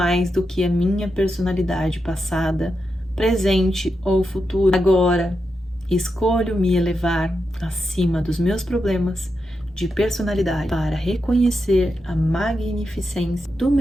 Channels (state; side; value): normal; both; correlation 0.87